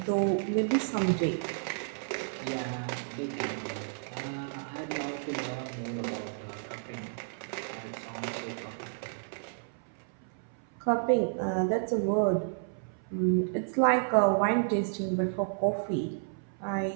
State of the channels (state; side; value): silent; left; 57 dB below the other